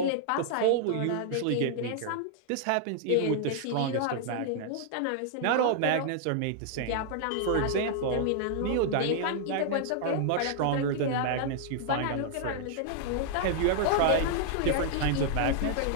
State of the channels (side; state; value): both; different; correlation -0.01